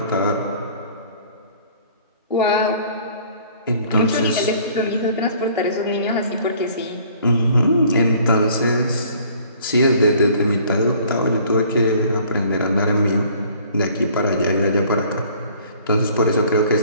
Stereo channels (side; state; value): both; inverted; correlation -0.55